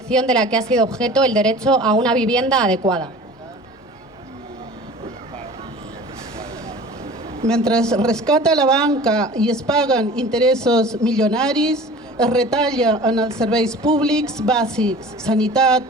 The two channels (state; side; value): normal; both; correlation 0.42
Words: de la que ha sido objeto el derecho a una vivienda adecuada. Mentre es rescata la banca i es paguen interessos milionaris, es retalla en els serveis públics bàsics,